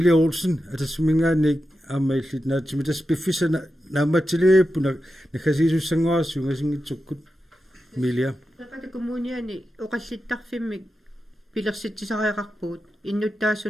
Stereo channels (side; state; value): both; normal; correlation 0.90